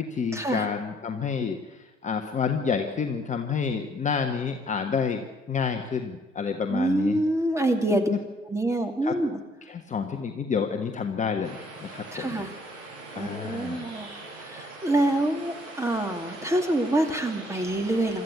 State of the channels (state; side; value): normal; both; correlation 0.64